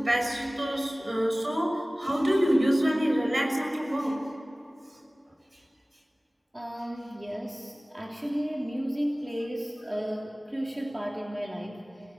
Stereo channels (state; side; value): normal; both; correlation 0.98